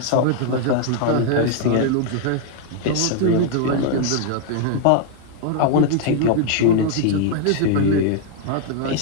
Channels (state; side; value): different; both; correlation 0.00